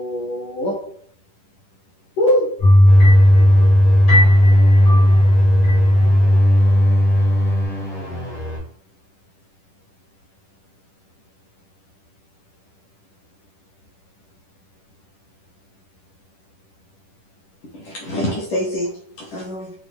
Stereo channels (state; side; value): late; right; 10 ms